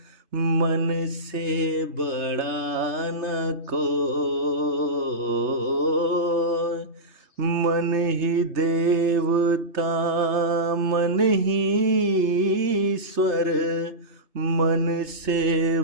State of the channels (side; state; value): left; late; 3.3 ms